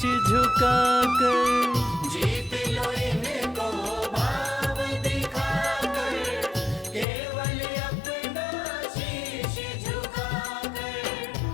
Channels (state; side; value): drops out; right; at 7.1 s